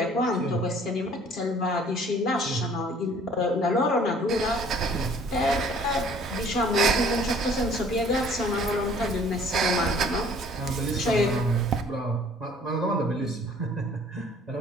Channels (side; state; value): both; normal; correlation 0.55